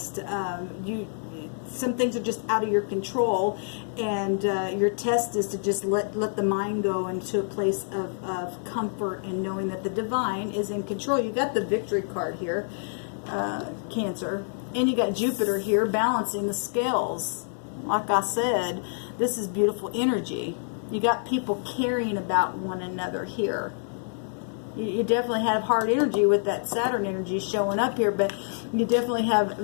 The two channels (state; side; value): silent; right; 60 dB below the other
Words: Some things are just out of your control, and your test is to just let the mind go into a place of comfort and knowing that the divine is in control. You got the victory card here, Cancer, and you got Jupiter here balancing the scales. Like I said, this is beautiful energy. You got people caring about one another here. You definitely have hard energy with that Saturn energy showing up here, but you definitely have